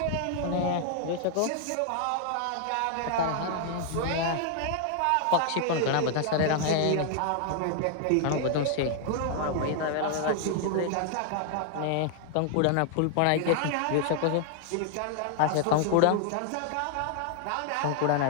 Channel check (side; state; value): both; different; correlation 0.00